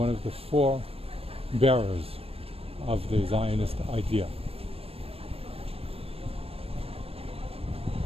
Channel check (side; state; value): left; late; 0.28 ms